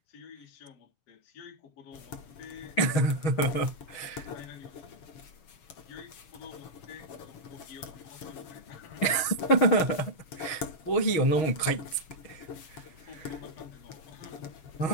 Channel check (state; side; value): late; right; 6.4 ms